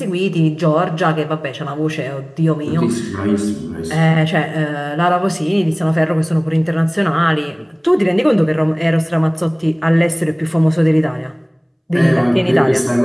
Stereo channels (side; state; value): both; identical; correlation 1.00